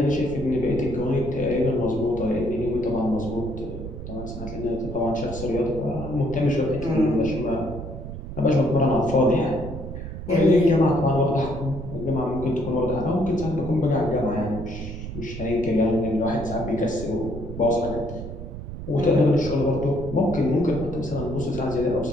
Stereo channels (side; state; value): right; noise; rumble, 9 dB below the sound